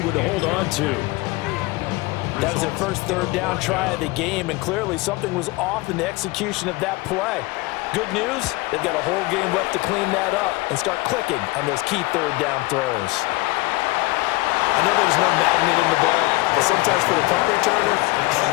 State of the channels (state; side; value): quieter; right; 21.8 dB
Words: one to hold on to. That was their first third down try of the game, and clearly something was off in the execution of that play. Good news, they've got a whole game left to clean that up and start clicking on those key third down throws. I know there's no magnet in the ball, but sometimes for the punt returner,